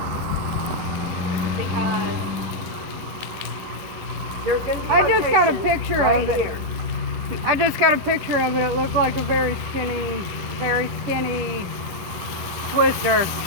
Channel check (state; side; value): late; left; 10 ms